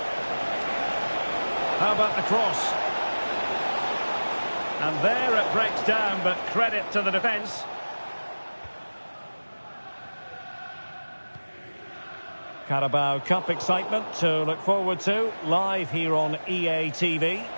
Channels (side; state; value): both; inverted; correlation -1.00